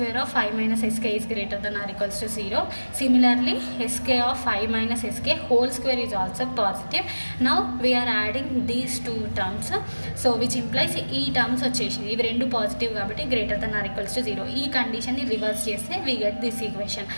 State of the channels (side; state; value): both; inverted; correlation -1.00